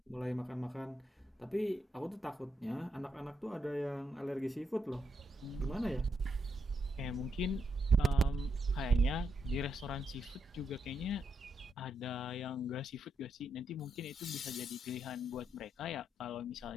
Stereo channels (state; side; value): normal; both; correlation 0.80